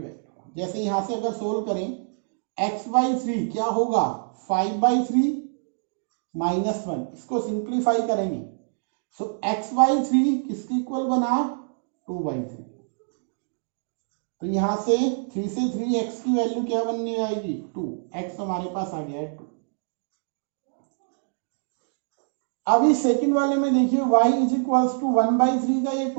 जैसे यहां से अगर सोल्व करें, x by 3 क्या होगा, 5 by 3 minus 1, इसको सिंप्लीफाई करेंगे। सो x by 3 किसके इक्वल बना, 2 by 3। तो यहां से 3 से 3 x की वैल्यू क्या बनने आएगी, 2, x हमारे पास आ गया है 2। अभी सेकंड वाले में देखिए y is equals to 1 by 3 का, ये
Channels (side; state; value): left; silent; digital silence